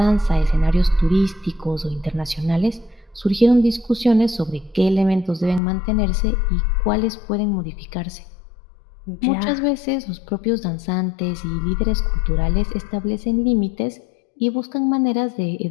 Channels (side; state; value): right; drops out; at 5.6 s